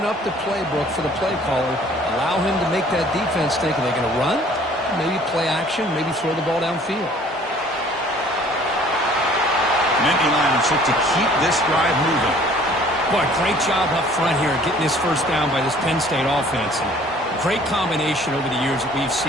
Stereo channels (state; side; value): normal; both; correlation 0.54